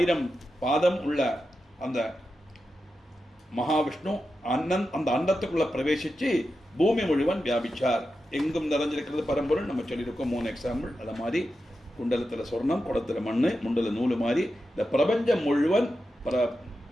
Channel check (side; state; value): both; normal; correlation 0.90